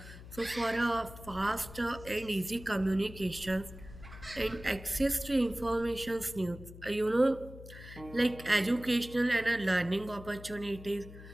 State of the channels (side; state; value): left; noise; hum, 15 dB below the sound